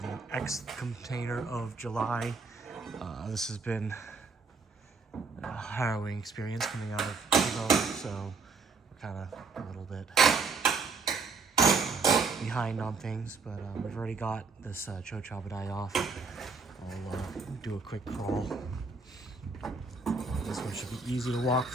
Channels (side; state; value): left; quieter; 4.4 dB